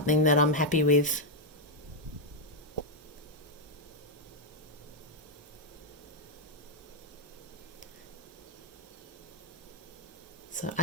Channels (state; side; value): normal; both; correlation 0.00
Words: that I'm happy with. So